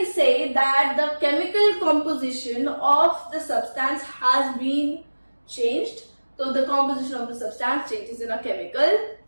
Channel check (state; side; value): inverted; both; correlation -1.00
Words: say that the chemical composition of the substance has been changed. So the composition of the substance changes in a chemical